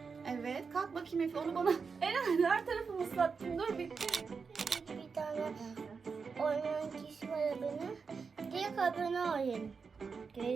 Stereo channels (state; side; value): quieter; left; 5.3 dB